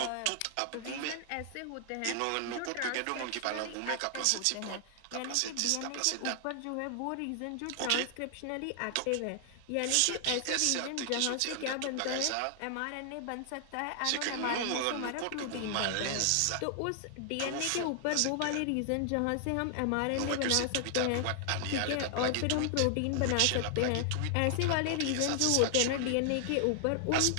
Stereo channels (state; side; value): different; both; correlation 0.00